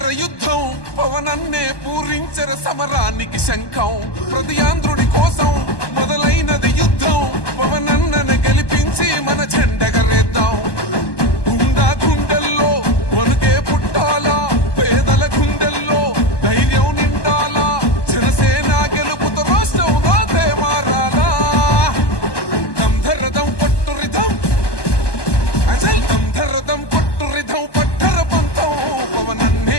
యుద్ధం పవనన్నే పూరించర సమరానికి శంఖం. ప్రతి ఆంధ్రుడి కోసం మొదలైనది యుద్ధం పవనన్నను గెలిపించి మన జెండగరేద్దాం. గుండా గుండెల్లో వణుకే పుట్టాలా పేదల గుండెల్లో ధైర్యం నిండాలా జనసేన గెలుపుతో రాష్ట్రం రాతే మారాలా. దంధరదం కొట్టురిదం అచల్ దంధరదం కొట్టురిదం పట్టర పంతం పవనన్నే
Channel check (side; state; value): right; late; 1.2 ms